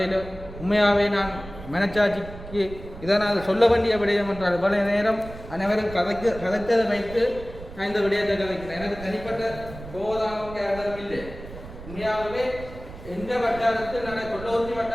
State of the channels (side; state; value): right; noise; rumble, 14 dB below the sound